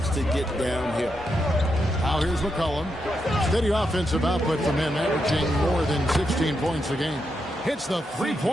to get downhill. Now here's McCollum. Steady offensive output from him, averaging more than 16 points a game. Hits the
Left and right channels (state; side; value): normal; both; correlation 0.84